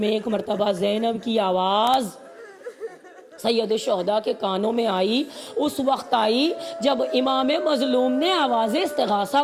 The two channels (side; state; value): both; identical; correlation 1.00